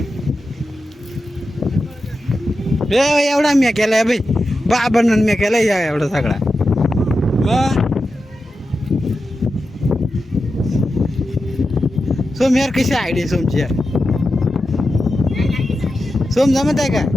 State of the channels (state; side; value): normal; both; correlation 0.90